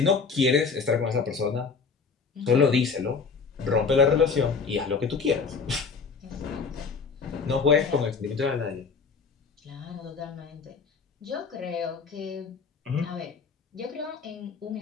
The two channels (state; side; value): quieter; right; 5.2 dB